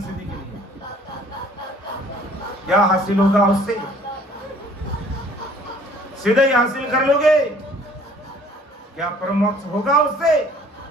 सिद्धि के लिए। क्या हासिल होगा उससे? सीधे ही हासिल कर लोगे? क्या परमोक्ष होगा उससे?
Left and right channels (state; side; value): normal; both; correlation 0.55